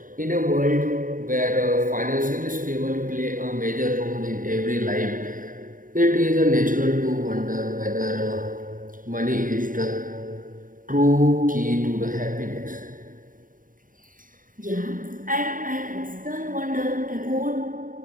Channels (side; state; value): left; late; 0.40 ms